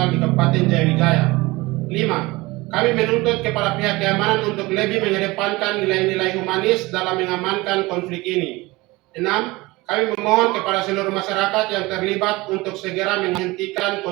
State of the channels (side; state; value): left; quieter; 21.7 dB